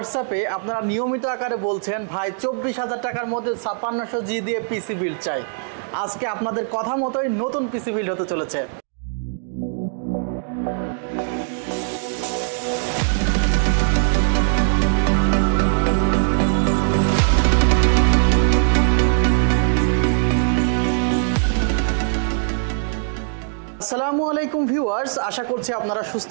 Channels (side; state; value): left; silent; 64 dB below the other